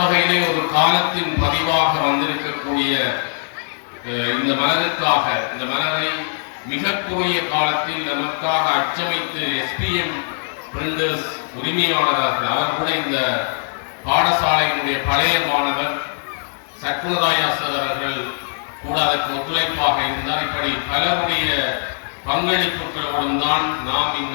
ஒரு காலத்தின் பதிவாக வந்திருக்கக்கூடிய இந்த மலருக்காக, இந்த மலரை மிக குறுகிய காலத்தில் நமக்காக அச்சமைத்து SPM பிரிண்டர்ஸ் உரிமையாளர்கள், அவர் கூட இந்த பாடசாலையினுடைய பழைய மாணவர் சக்குனராயா சார் அவர்கள் கூட அதற்கு ஒத்துழைப்பாக இருந்தார். இப்படி பலருடைய பங்களிப்புகளோடும் தான் நாம்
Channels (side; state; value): right; silent; digital silence